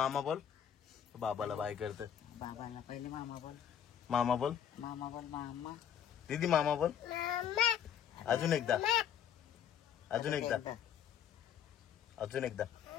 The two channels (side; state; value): right; quieter; 9.3 dB